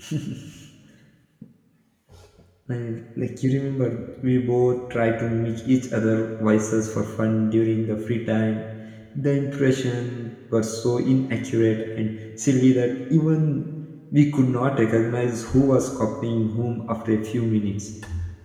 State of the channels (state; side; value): identical; both; correlation 1.00